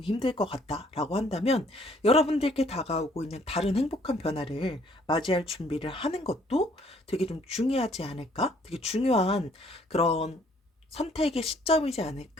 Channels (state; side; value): normal; both; correlation 0.62